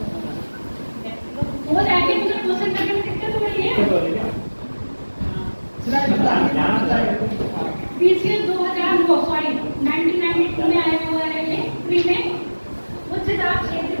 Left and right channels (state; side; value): inverted; both; correlation -1.00